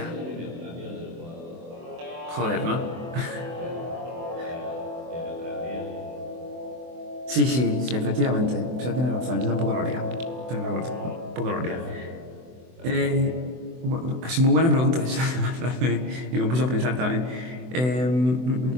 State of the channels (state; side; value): late; left; 24 ms